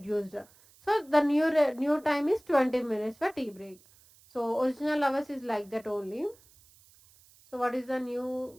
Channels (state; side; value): noise; right; hiss, 28 dB below the sound